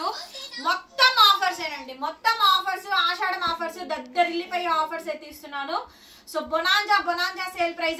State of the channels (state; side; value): identical; both; correlation 1.00